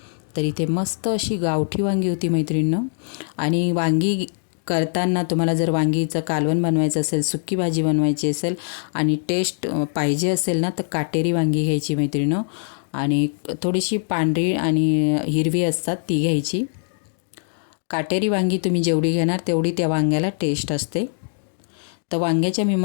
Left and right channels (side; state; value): right; silent; 64 dB below the other